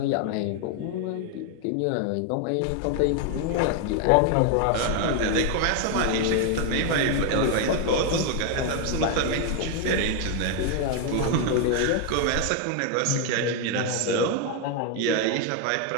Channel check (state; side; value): different; both; correlation 0.01